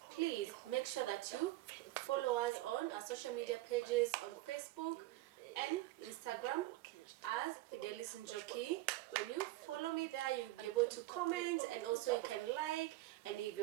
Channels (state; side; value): quieter; left; 17.7 dB